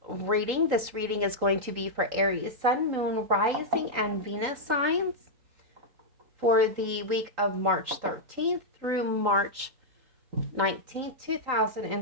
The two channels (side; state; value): left; late; 3.8 ms